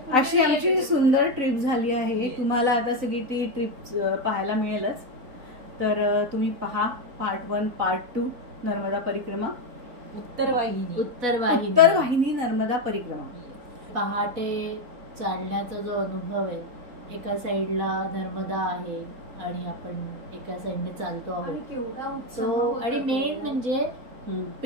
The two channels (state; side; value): late; left; 3.9 ms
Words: अशी आमची सुंदर ट्रिप झाली आहे. तुम्हाला आता सगळी ती ट्रिप पाहायला मिळेलच. तर तुम्ही पहा पार्ट 1 पार्ट 2 नर्मदा परिक्रमा. उत्तरवाहिनी नर्मदा परिक्रमा. पहाटे चालण्याचा जो अनुभव आहे, एका साईडला नर्मदा आहे आणि आपण एका साईडने चालतो आहोत तो. आणि मेन म्हणजे